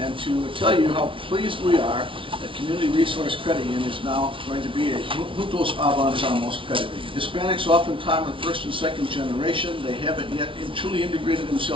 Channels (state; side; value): late; left; 0.25 ms